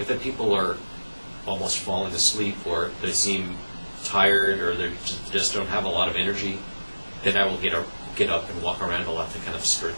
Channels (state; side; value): inverted; both; correlation -1.00